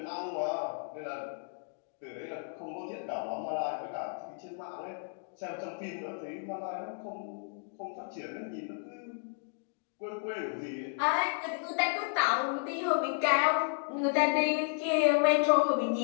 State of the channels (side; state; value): right; silent; 56 dB below the other